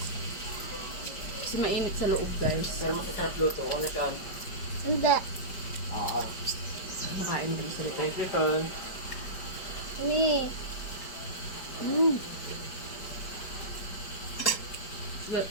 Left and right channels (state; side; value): late; right; 5.0 ms